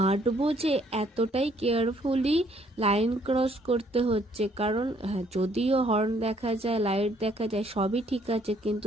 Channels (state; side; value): normal; both; correlation 0.65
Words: যে এতটাই কেয়ারফুলি লাইন ক্রস করতে হচ্ছে, কারণ হ্যাঁ, যদিও হর্ন দেখা যায়, লাইট দেখা যায়, সবই ঠিক আছে,